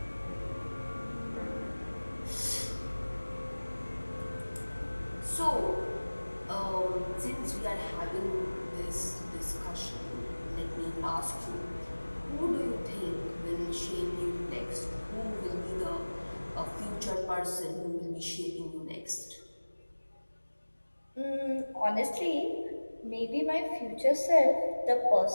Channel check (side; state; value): both; inverted; correlation -1.00